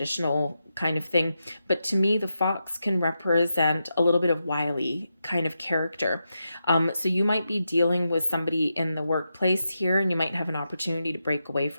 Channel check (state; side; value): inverted; both; correlation -0.87